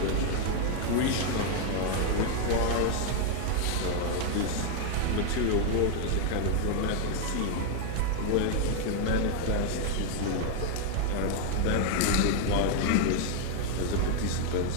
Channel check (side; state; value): both; different; correlation 0.00